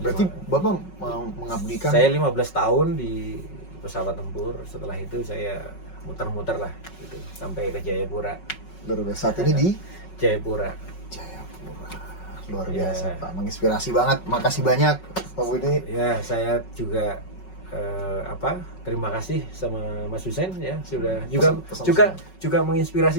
Bapak mau mengabdikan. Saya 15 tahun di pesawat tempur. Setelah itu saya muter-muter lah gitu sampai ke Jayapura. Luar biasa. Saat ini di Jayapura. Luar biasa Pak, menginspirasi banget. Makasih banyak Pak Budi. Ya, saya juga terima kasih sama Mas Hussein ya, sudah juga menginspirasi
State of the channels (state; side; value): late; right; 5.4 ms